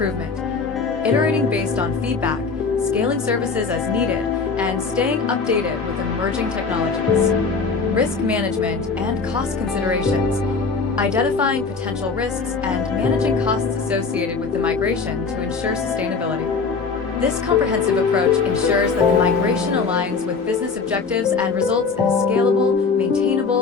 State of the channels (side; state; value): right; quieter; 4.8 dB